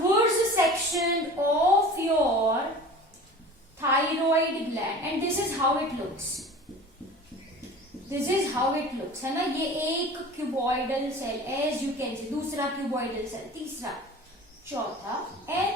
section of your thyroid gland and this is how it looks. This is how it looks, है ना. ये एक cuboidal cell, as you can see, दूसरा cuboidal cell, तीसरा, चौथा,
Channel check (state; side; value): normal; both; correlation 0.40